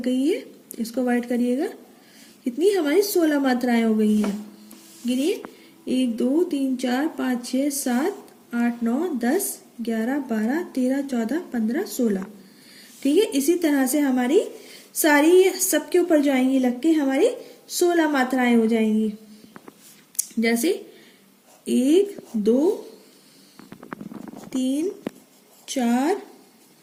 गई है, इसको वाइट करिएगा। कितनी हमारी 16 मात्राएं हो गई हैं। गिनिए, 1 2 3 4 5 6 7 8 9 10 11 12 13 14 15 16, ठीक है। इसी तरह से हमारी सारी सबके ऊपर जाएंगी लग के हमारी 16 मात्राएं हो जाएंगी। जैसे 1 2 3 4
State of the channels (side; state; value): both; identical; correlation 1.00